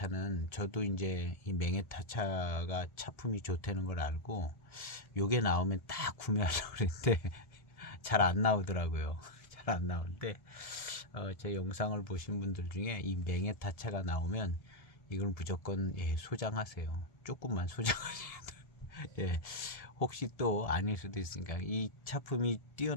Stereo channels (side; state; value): right; late; 1.7 ms